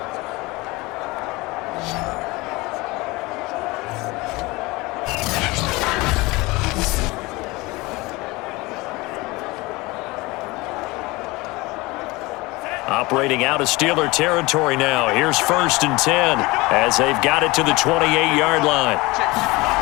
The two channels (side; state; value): right; quieter; 22.6 dB